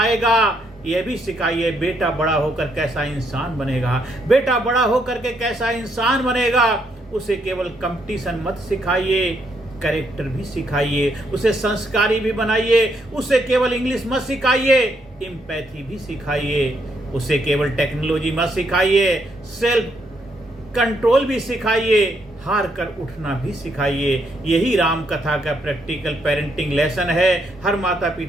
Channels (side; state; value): both; normal; correlation 0.75